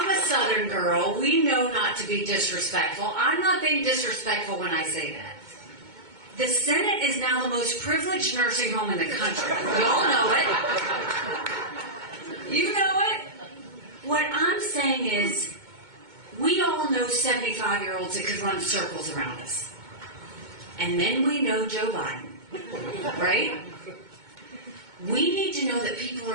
Southern girl, we know not to be disrespectful. I'm not being disrespectful when I say that. The Senate is now the most privileged nursing home in the country. We all know it. You know it. What I'm saying is, we all know 75-year-olds that could run circles around us. And then we know Joe Biden, right? We need to know that people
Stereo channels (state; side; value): late; left; 2.2 ms